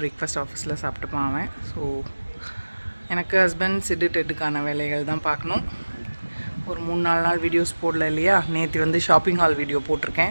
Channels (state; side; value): inverted; both; correlation -1.00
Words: பிரேக்ஃபாஸ்ட் ஆஃபீஸில் சாப்பிட்டுப்பான் அவன். ஸோ எனக்கு ஹஸ்பண்ட் சிட்டு டெட்டுக்கான வேலைகள் தான் பார்க்கணும். ஒரு 3-4 நாள் வீடியோஸ் போடல இல்லையா? நேற்று வந்து ஷாப்பிங் ஹால் வீடியோ